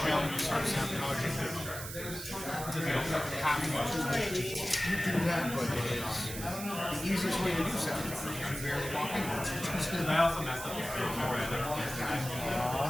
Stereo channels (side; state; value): right; noise; hiss, 9 dB below the sound